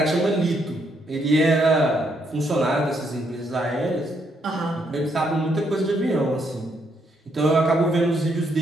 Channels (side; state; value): both; normal; correlation 0.74